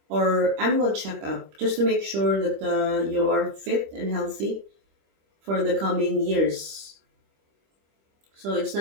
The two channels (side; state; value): left; late; 25 ms